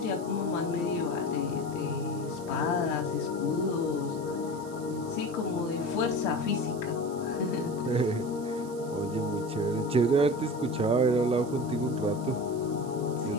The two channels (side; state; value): right; noise; hiss, 20 dB below the sound